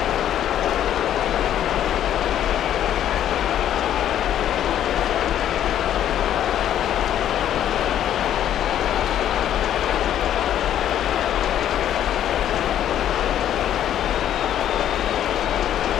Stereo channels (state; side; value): quieter; right; 10.9 dB